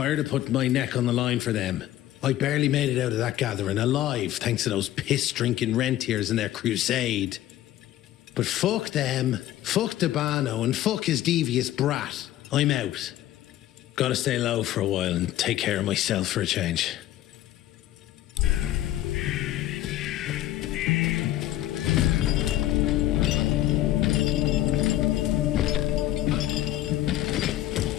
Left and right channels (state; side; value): quieter; right; 13.8 dB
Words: of putting my neck on the line for them. I barely made it out of that gathering alive, thanks to those piss-drinking rentiers and their crusade. But fuck them, fuck Dabano, and fuck his devious brat. I'm out. Gotta stay low for a while and take care of myself for a change.